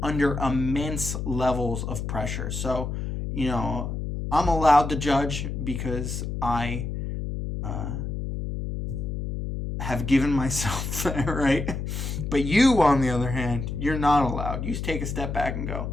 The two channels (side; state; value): left; noise; hum, 4 dB below the sound